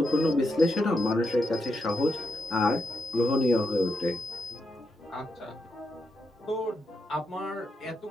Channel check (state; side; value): normal; both; correlation 0.83